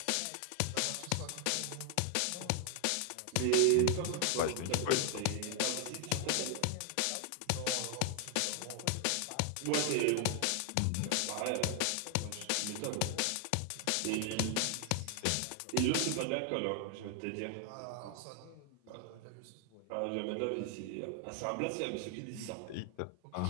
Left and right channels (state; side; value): different; both; correlation 0.00